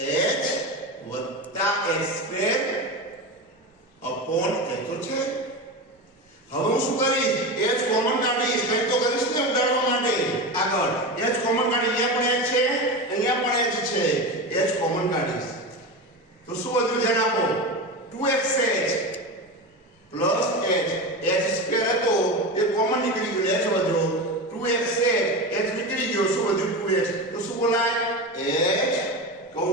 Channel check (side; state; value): both; normal; correlation 0.23